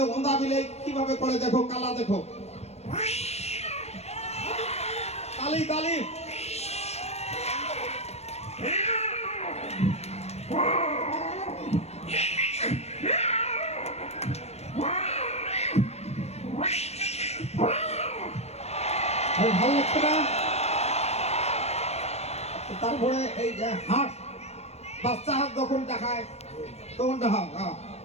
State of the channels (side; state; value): right; late; 0.31 ms